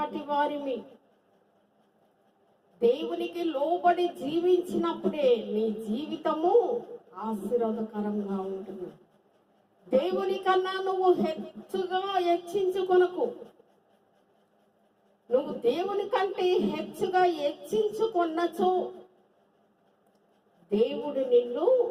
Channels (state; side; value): identical; both; correlation 1.00